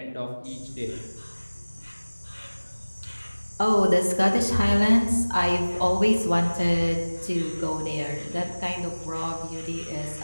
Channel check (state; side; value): inverted; both; correlation -1.00